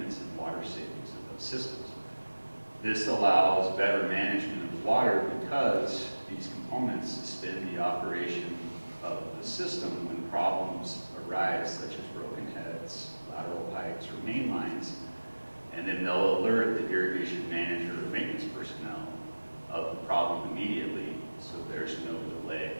and water savings of those systems. This allows better management of water because these components suspend the operation of the system when problems arise, such as broken heads, lateral pipes, or main lines, and then they'll alert the irrigation manager or maintenance personnel of the problem immediately, so there's no delay.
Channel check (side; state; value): both; inverted; correlation -1.00